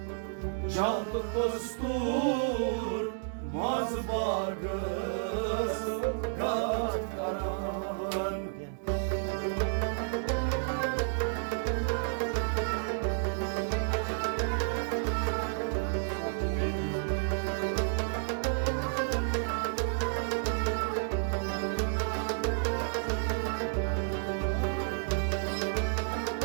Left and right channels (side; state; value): left; silent; 57 dB below the other